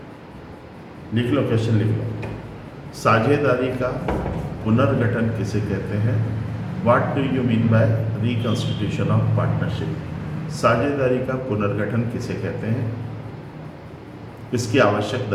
लिख लो, क्वेश्चन लिख लो। साझेदारी का पुनर्गठन किसे कहते हैं? What do you mean by reconstitution of partnership? साझेदारी का पुनर्गठन किसे कहते हैं? इसकी आवश्यक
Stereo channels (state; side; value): identical; both; correlation 1.00